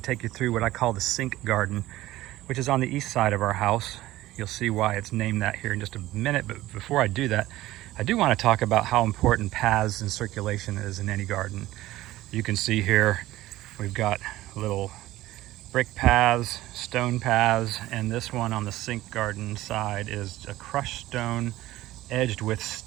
to take you through what I call the sink garden, which is on the east side of our house. You'll see why it's named that here in just a minute, but before I do that, I do want to talk about how important paths and circulation is in any garden. You can see here we've got little brick paths, stone paths, and this one on the sink garden side is a crushed stone edged with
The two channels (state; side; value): quieter; left; 16.3 dB